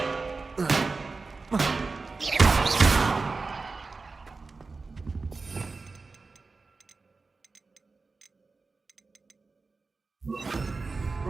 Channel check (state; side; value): quieter; left; 4.0 dB